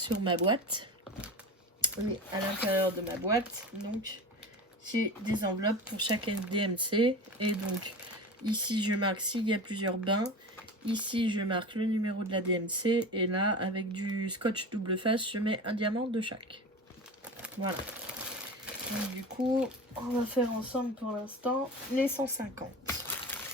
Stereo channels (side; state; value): both; normal; correlation 0.31